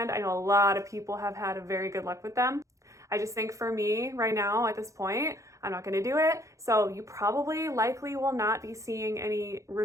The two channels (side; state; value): left; late; 0.15 ms